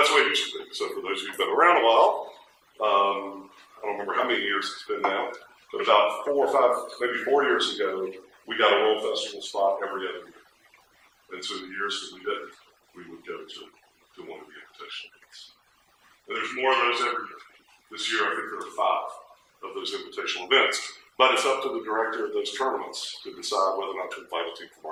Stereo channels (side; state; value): both; identical; correlation 1.00